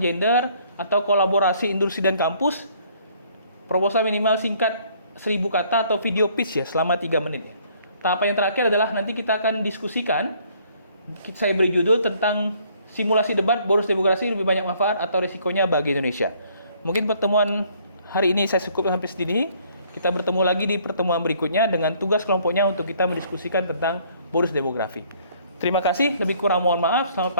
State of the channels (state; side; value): inverted; both; correlation -0.62